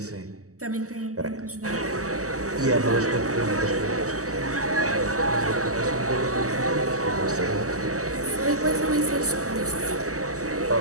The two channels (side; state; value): left; late; 0.66 ms